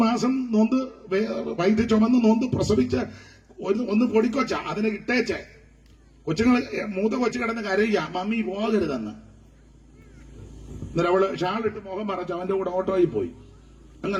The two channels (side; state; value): both; identical; correlation 1.00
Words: മാസം നൊന്ത് വൈദ്യ ചുമന്ന് നൊന്ത് പ്രസവിച്ച് ഒന്ന് പൊടിക്കൊച്ച അതിനെ ഇട്ടേച്ച് മൂത്ത കൊച്ചു കിടന്ന് കരയുക, മമ്മി പോകരുതെന്ന്. എന്നിട്ട് അവള് ഷാളിട്ട് മുഖം മറച്ച് അവന്റെ കൂടെ ഓട്ടോയിൽ പോയി.